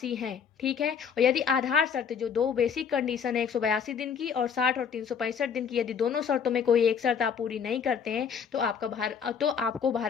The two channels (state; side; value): quieter; right; 6.9 dB